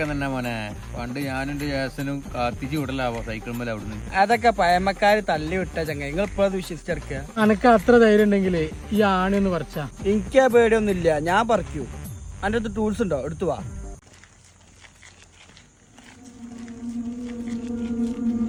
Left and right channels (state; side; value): identical; both; correlation 1.00